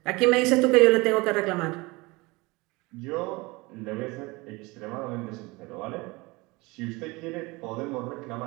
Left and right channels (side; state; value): left; quieter; 23.9 dB